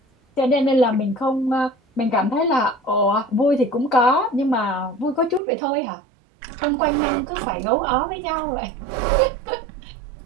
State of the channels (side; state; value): left; drops out; at 5.4 s